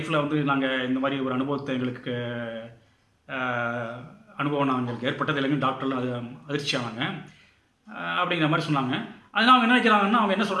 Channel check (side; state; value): both; identical; correlation 1.00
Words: வந்து நாங்கள் இந்த மாதிரி ஒரு அனுபவத்தை எங்களுக்கு அனுபவம் எங்களுக்கு ஏற்பட்டது இல்லைங்க. டாக்டர்லாம் அது அதிர்ச்சியானாங்க அப்படிங்கிற மாதிரி சொன்னாங்க. அதனால் அவங்க என்ன நினைக்கிறாங்கன்னா, அவங்க என்ன